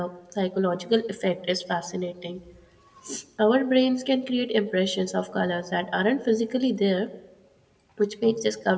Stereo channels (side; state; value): both; identical; correlation 1.00